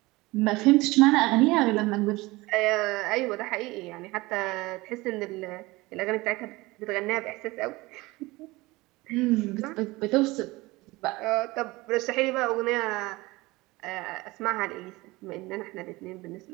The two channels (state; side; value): quieter; left; 21.4 dB